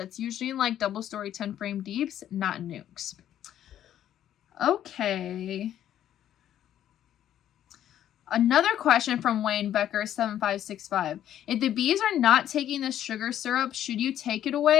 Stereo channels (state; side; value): quieter; right; 11.1 dB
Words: usually in like double story 10 frame deeps, not nucs. Okay. Another question from Wayne Becker 7565. If the bees are not taking the sugar syrup, should you take it